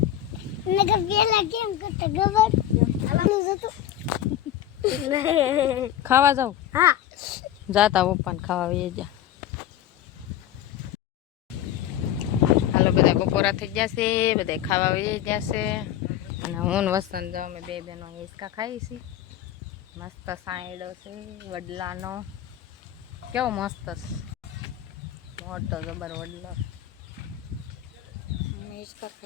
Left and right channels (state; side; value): quieter; right; 11.5 dB